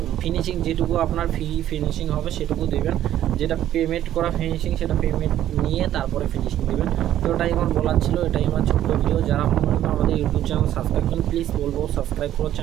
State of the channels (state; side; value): quieter; left; 12.1 dB